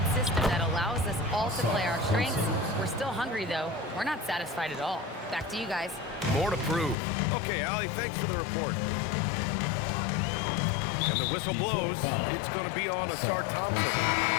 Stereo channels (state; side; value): drops out; right; at 7.0 s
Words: system that allows us all to play our strengths. We're still hungry, though. We're not satisfied at all. Back to you guys. More to prove. Okay, Allie, thanks for the report. And the whistle blows. It's going to be on Asar Thompson.